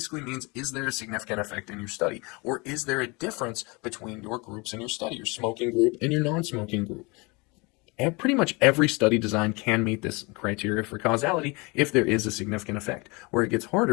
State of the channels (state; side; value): quieter; right; 27.2 dB